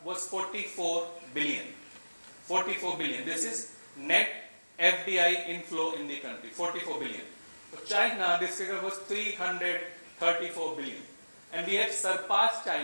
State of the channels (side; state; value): both; inverted; correlation -1.00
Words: was 44 billion. 44 billion. This is net FDI inflow in the country, 44 billion. For China, this figure was 334 billion. And we have surpassed